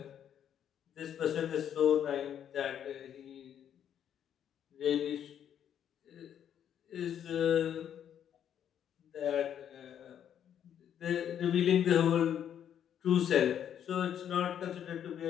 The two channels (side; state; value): right; quieter; 9.4 dB